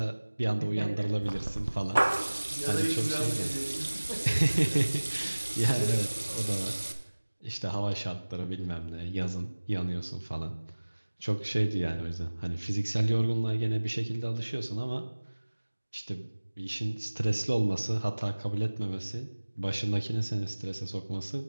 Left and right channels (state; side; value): inverted; both; correlation -1.00